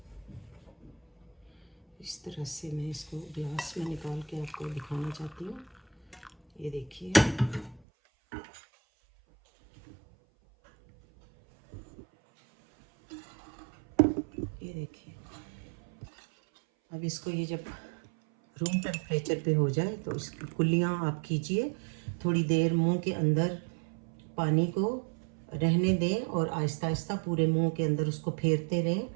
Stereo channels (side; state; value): left; drops out; at 7.8 s